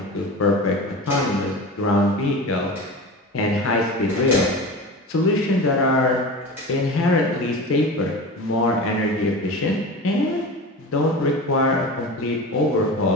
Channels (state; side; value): normal; both; correlation 0.31